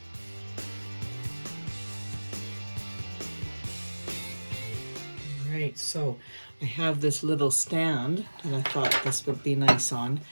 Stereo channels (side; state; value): both; inverted; correlation -1.00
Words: All right, so I have this little stand that I thought this would be nice on.